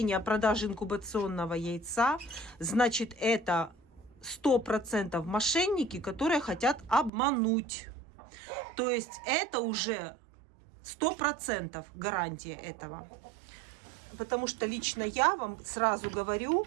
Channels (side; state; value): left; drops out; at 7.1 s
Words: о продаже инкубационного яйца, значит, это 100% мошенники, которые хотят обмануть. То есть это уже 100% гарантия этого. Потому что лично я вам сразу говорю,